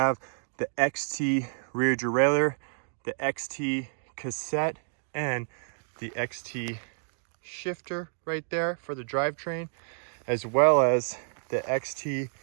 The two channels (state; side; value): silent; left; digital silence